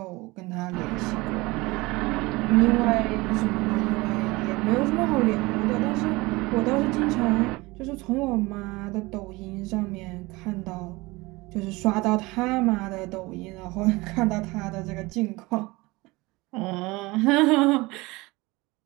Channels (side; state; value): left; quieter; 22.4 dB